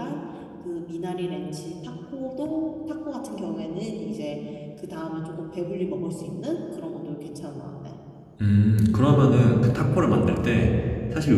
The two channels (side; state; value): both; identical; correlation 1.00